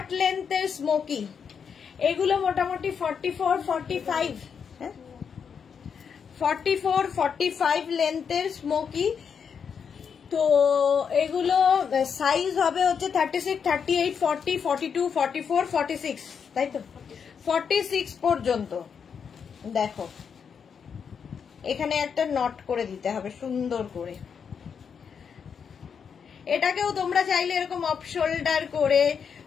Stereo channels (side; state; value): right; quieter; 6.8 dB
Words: লেন্থের স্মোকি, এগুলো মোটামুটি 44, 45, 44, 45 লেন্থের স্মোকি। তো এগুলো সাইজ হবে হচ্ছে 36, 38, 40, 42, 44, 46, তাই তো 46 পর্যন্ত। দেখো এখানে একটা নট করে দিতে হবে সুন্দর করে। এটাকেও তোমরা চাইলে এরকম অফ শোল্ডার করে,